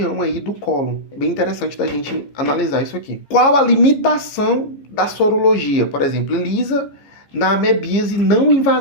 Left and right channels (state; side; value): late; right; 15 ms